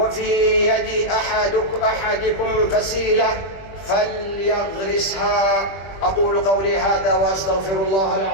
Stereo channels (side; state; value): right; late; 20 ms